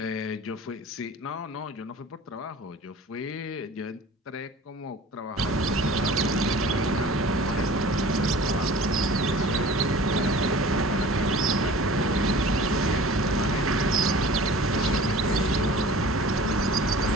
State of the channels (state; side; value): normal; both; correlation 0.43